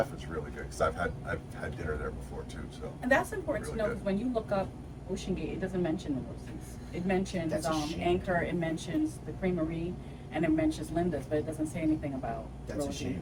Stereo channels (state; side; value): identical; both; correlation 1.00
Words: is really good because I've had dinner there before too. So And that's important Really to know good. because when you look up Ocean Gate, it doesn't mention the Rosie's. It mentions That's a shame. Anchor, it mentions the Creamery, and it mentions Linda's, but it doesn't say anything about That's a Rosie's.